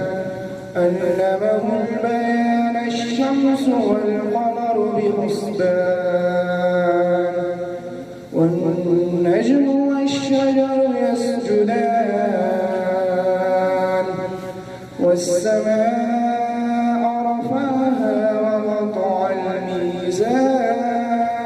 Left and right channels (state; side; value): identical; both; correlation 1.00